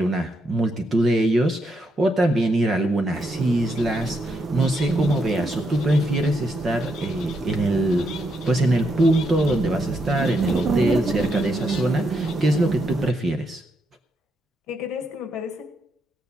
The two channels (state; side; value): normal; both; correlation 0.79